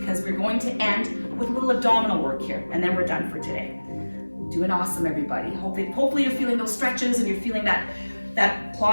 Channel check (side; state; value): both; inverted; correlation -1.00